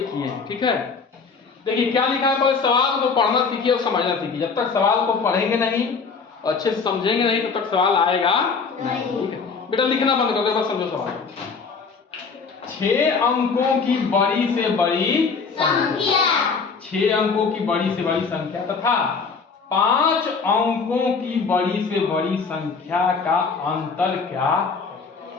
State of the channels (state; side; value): quieter; right; 5.1 dB